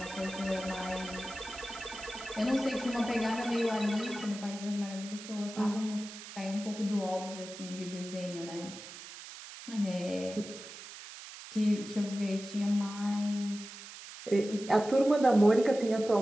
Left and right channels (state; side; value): noise; right; hiss, 13 dB below the sound